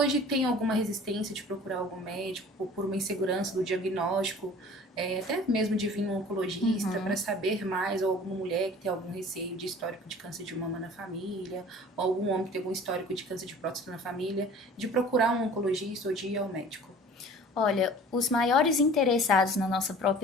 tem alguma resistência de procurar algum médico por uma insegurança do diagnóstico, até mesmo de vir um oncologista para saber mais, ou alguma mulher que tem algum receio de histórico de câncer de mama na família, ou algum homem que tem algum histórico de câncer de próstata na família, de procurar um oncologista ou de ir ao médico? Olha, os maiores interessados na nossa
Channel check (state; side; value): normal; both; correlation 0.46